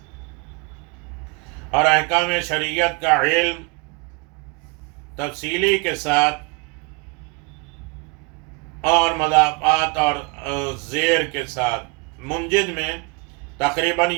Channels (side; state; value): left; quieter; 29.0 dB